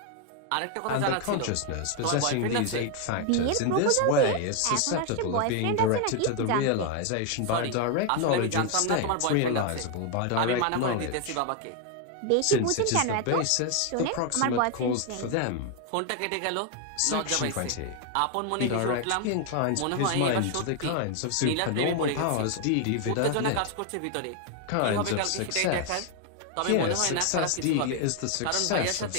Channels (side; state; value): both; different; correlation 0.01